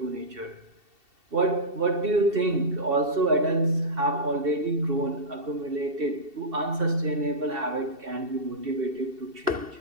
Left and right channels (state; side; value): late; left; 2.7 ms